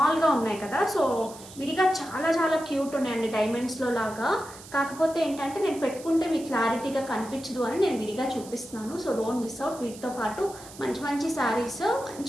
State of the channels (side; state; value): right; noise; hiss, 17 dB below the sound